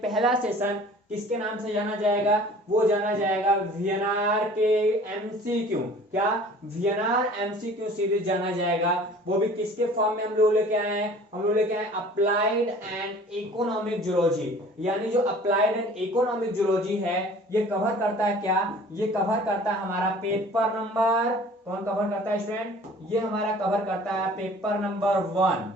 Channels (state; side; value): normal; both; correlation 0.48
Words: पहला सेशन किसके नाम से जाना जाएगा, वो जाना जाएगा वीएनआर के एमसीक्यू। क्या, वीएनआर एमसीक्यू सीरीज जाना जाएगा। वो भी किसके फॉर्म में हम लोग लेके आए हैं, हम लोग लेके आए अप्लाइड एंड इकोनॉमिक जूलॉजी। यानी जो अप्लाइड एंड इकोनॉमिक जूलॉजी है, ये कवर करता है क्या, ये कवर करता है हमारा पेपर नंबर, कौन कवर करता है स्टूडेंट, ये हमारा कवर करता है पेपर नंबर 1।